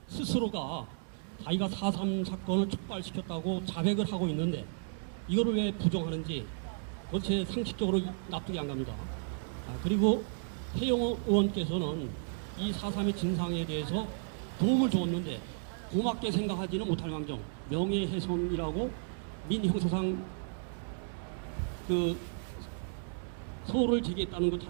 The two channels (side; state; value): left; silent; digital silence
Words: 스스로가 자기가 4.3 사건을 촉발시켰다고 자백을 하고 있는데 이거를 왜 부정하는지 그것이 상식적으로 납득이 안 갑니다. 그리고 태영호 의원께서는 이 4.3의 진상에 대해서 도움을 줬는데 고맙게 생각하지는 못할 망정 명예훼손이라고 민형사상 그 소를 제기했다는 것